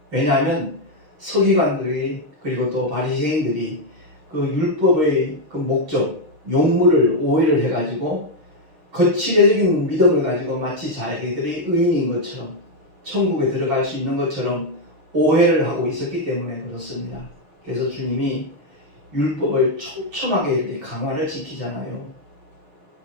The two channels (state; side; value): late; left; 6.6 ms